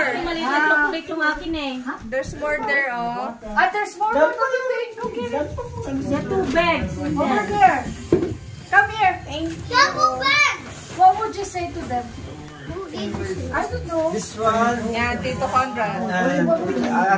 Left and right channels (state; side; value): identical; both; correlation 1.00